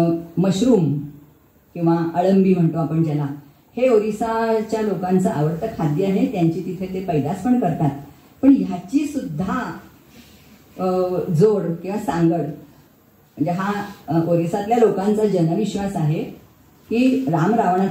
मशरूम किंवा अळंबी म्हणतो आपण ज्याला, हे ओरिसाच्या लोकांचं आवडतं खाद्य आहे. त्यांची तिथे ते पैदास पण करतात. पण ह्याची सुद्धा जोड किंवा सांगड, म्हणजे हा ओरिसातल्या लोकांचा जनविश्वास आहे की राम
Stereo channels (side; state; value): both; identical; correlation 1.00